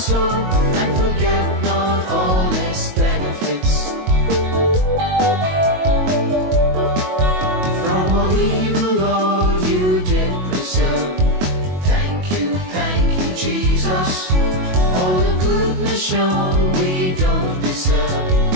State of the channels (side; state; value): left; late; 22 ms